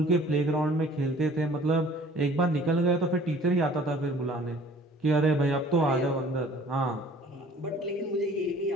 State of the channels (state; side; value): normal; both; correlation 0.52